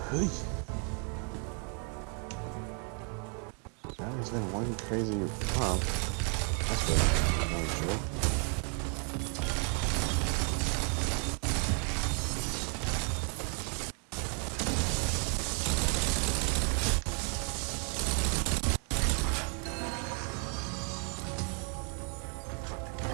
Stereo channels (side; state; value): left; quieter; 39.1 dB